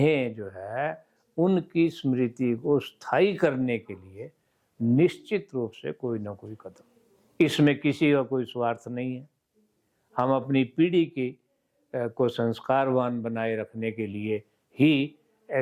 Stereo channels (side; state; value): both; identical; correlation 1.00